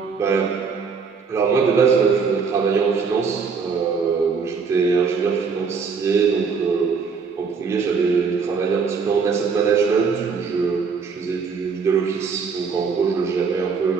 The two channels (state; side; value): quieter; left; 5.4 dB